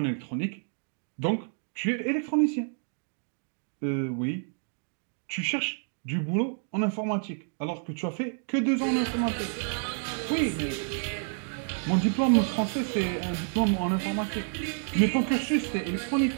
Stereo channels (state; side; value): silent; left; 58 dB below the other